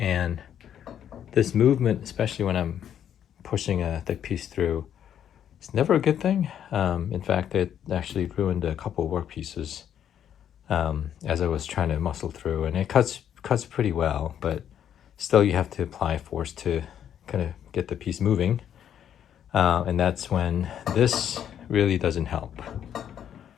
this movement, especially when I'm pushing a thick piece through, it's never a good thing. In fact, it actually ruined a couple of work pieces as I was trying to muscle through, and it cuts pretty well, but still you have to apply force to kind of get the piece moving, and that's when this really doesn't help.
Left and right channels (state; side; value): quieter; right; 9.6 dB